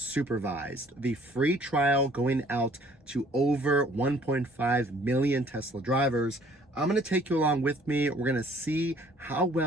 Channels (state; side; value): normal; both; correlation 0.58